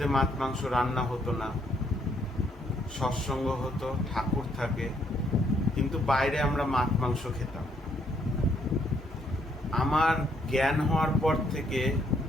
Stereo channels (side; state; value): both; normal; correlation 0.71